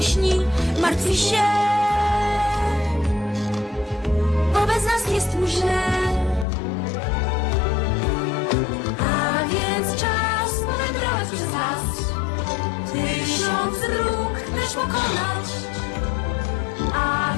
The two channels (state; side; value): drops out; right; at 6.5 s